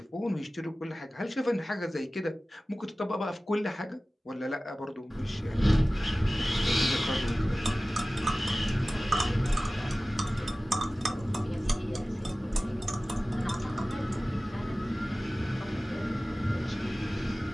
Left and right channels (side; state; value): both; normal; correlation 0.97